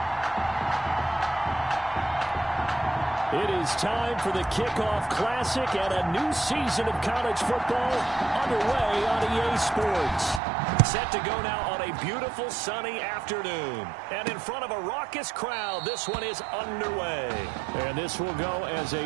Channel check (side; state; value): left; drops out; at 10.4 s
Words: It is time for the Kickoff Classic and a new season of college football underway on EA Sports. Set to go now on a beautiful sunny afternoon. And in front of a raucous crowd, this one is underway. And this will go as a